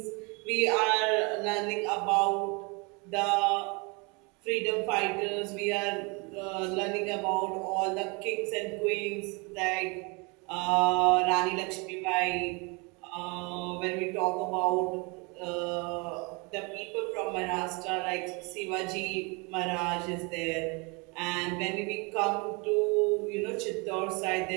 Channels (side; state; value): left; quieter; 30.0 dB